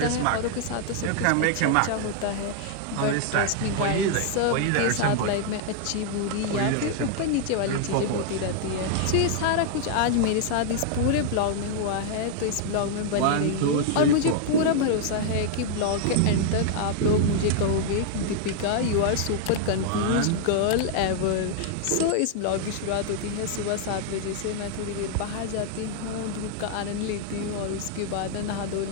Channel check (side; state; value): both; different; correlation 0.00